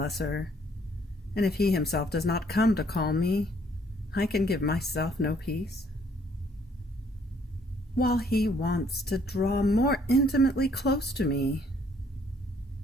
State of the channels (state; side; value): normal; both; correlation 0.64